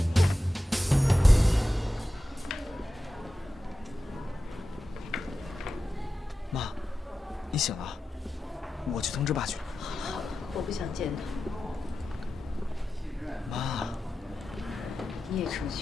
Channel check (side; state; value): both; normal; correlation 0.92